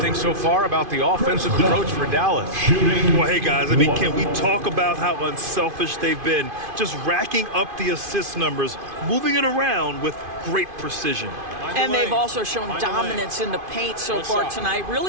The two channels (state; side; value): late; left; 2.5 ms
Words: so far about the offensive approach for Dallas? Well, hey, guys, I mean, can we talk about how unselfish they've been? Just racking up the assist numbers, moving it around with great precision. And they've also shown dominance in the paint so far tonight,